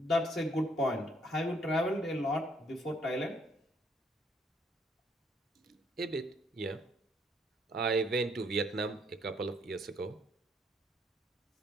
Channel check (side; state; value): both; normal; correlation 0.68